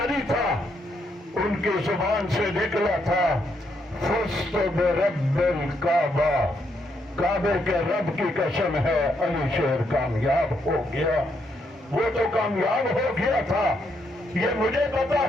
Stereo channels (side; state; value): both; normal; correlation 0.77